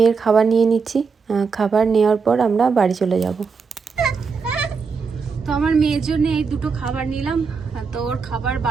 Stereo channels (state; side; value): quieter; left; 5.2 dB